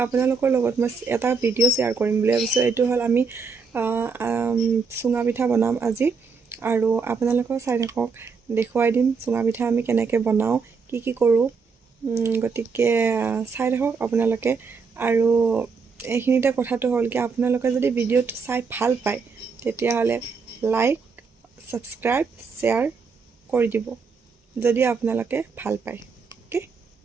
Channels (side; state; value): left; quieter; 5.1 dB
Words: লগত মই এটা ভিডিঅ' শ্বেয়াৰ কৰিম বুলি ভাবিছোঁ। এইটো হ'ল আমি চুঙা পিঠা বনাম আজি, আৰু আপোনালোকেও চাই থাকক, দেখুৱাই দিম চুঙা পিঠা আমি কেনেকৈ বনাওঁ, কি কৰোঁ। গতিকে চাই থাকক আপোনালোকে। আৰু এইখিনিতে কথাটো হ'ল কি, আপোনালোকে যদি ভিডিঅ'টো চাই ভাল পায় তেতিয়াহ'লে লাইক, ছাবস্ক্ৰাইব, শ্বেয়াৰ কৰি দিব যদি আপোনালোকে ভাল পায়। অ'কে,